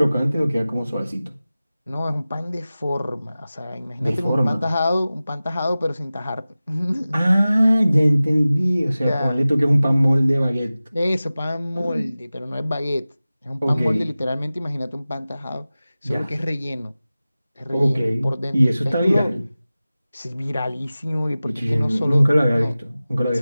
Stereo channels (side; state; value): both; inverted; correlation -0.97